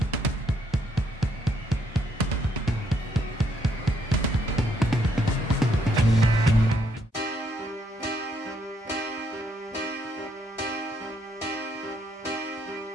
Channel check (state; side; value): normal; both; correlation 0.72